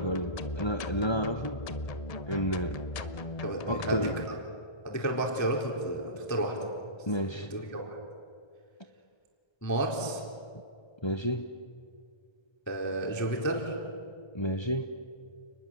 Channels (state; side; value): late; right; 1.3 ms